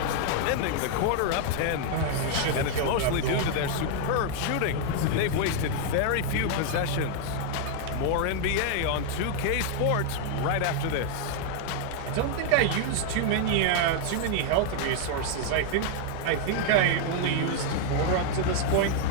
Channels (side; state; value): both; different; correlation 0.00